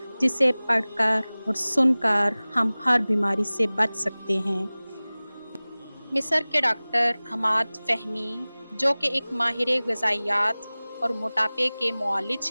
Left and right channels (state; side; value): inverted; both; correlation -0.99